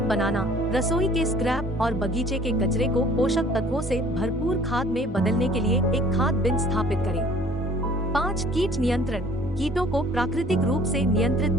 बनाना। रसोई के स्क्रैप और बगीचे के कचरे को पोषक तत्वों से भरपूर खाद में बदलने के लिए एक खाद बिन स्थापित करें। 5. कीट नियंत्रण। कीटों को प्राकृतिक रूप से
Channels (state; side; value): normal; both; correlation 0.54